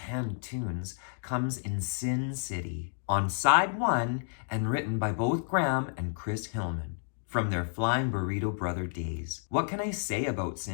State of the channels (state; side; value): silent; right; digital silence